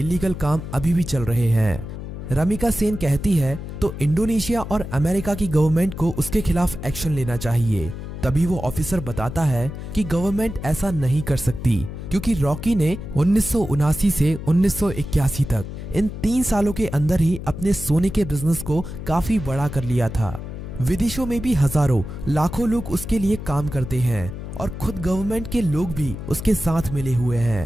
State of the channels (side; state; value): left; noise; hum, 9 dB below the sound